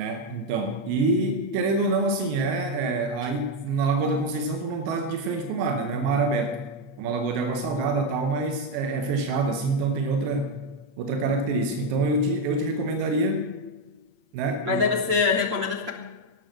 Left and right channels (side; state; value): left; late; 8.5 ms